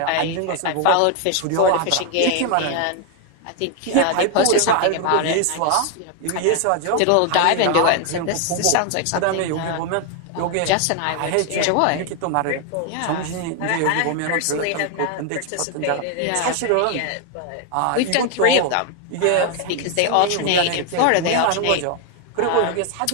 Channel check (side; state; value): both; different; correlation 0.01